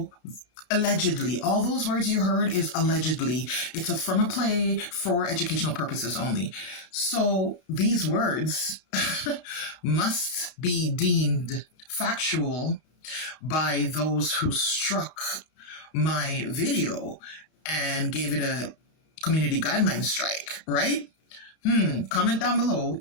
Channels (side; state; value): right; late; 32 ms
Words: allegedly, all those words you heard is allegedly. It's from a play for educational purposes only. So these words must be deemed factual by those who struck my video and gave it a community guideline strike, right? Comment down below